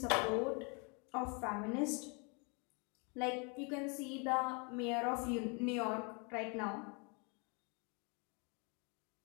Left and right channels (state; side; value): quieter; right; 33.6 dB